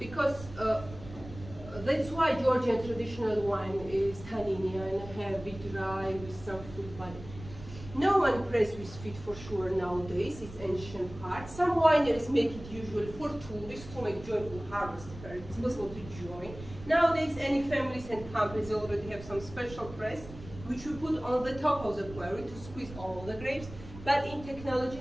that's why Georgian traditional wine is tanninian, heavy, dry, with some fruit body. No one press with feet for sure nowadays, it's ancient part. Some wineries make it usually for tourists to make joyful harvest fair. It's possible to join. Nowadays, any families and companies already have some special press, which we put on the top of the query to squeeze all the grapes. But in technology,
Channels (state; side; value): noise; right; rumble, 15 dB below the sound